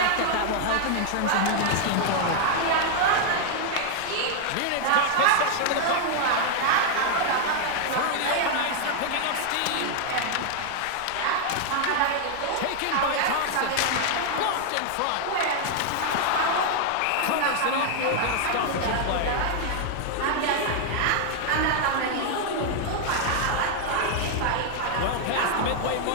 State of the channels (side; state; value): both; different; correlation 0.00